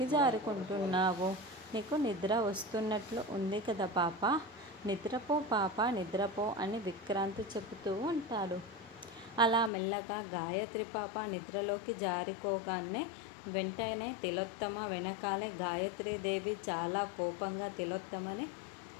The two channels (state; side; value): drops out; right; at 9.7 s